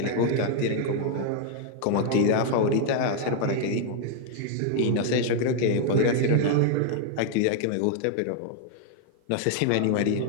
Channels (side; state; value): both; different; correlation 0.00